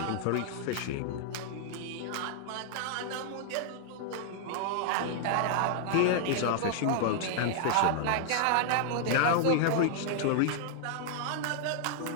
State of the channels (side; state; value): both; different; correlation -0.01